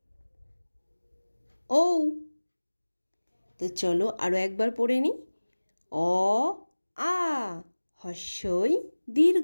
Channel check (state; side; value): inverted; both; correlation -1.00